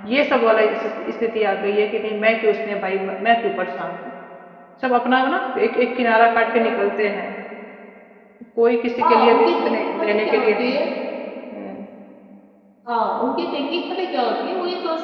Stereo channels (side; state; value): both; identical; correlation 1.00